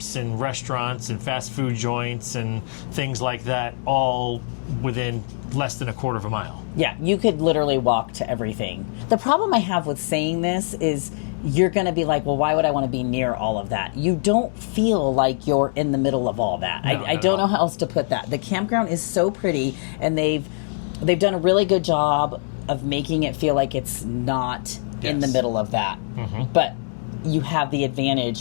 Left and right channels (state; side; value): silent; right; digital silence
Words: and restaurants and fast food joints and things like that, all within less than a quarter of a mile. Yeah, you could literally walk to everything. The problem I have with saying this is you're going to be like, well, why would I want to be near all of that? You don't feel like you're in the middle of all that. No, I don't know how else to put that. The campground is so pretty, and they've done a really good job of making it feel like it's not in the middle of that. But you have the